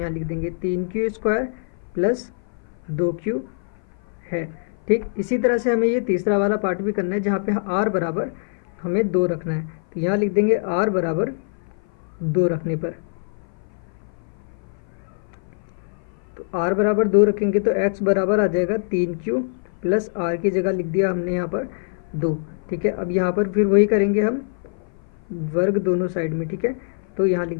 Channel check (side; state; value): right; silent; 55 dB below the other